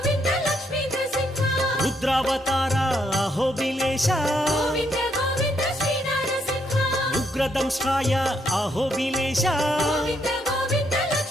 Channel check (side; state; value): both; normal; correlation 0.75